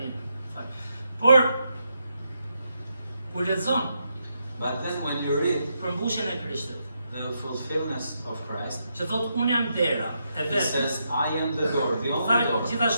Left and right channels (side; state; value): both; inverted; correlation -0.81